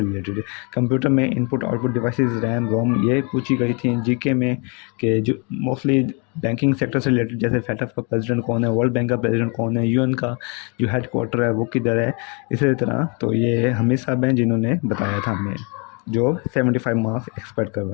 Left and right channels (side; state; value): right; quieter; 33.6 dB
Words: रिलेटेड। कंप्यूटर में input output devices, RAM ROM, ये पूछी गई थी। जीके में कि जो मोस्टली बैंकिंग सेक्टर से रिलेटेड, जैसे फेडरल का प्रेसिडेंट कौन है, वर्ल्ड बैंक का प्रेसिडेंट कौन है, यूएन का जो हेड क्वार्टर है वो किधर है, इसी तरह। तो ये हमीद साहब हैं जिन्होंने बताया था हमें, जो 75 मार्क्स एक्सपेक्ट कर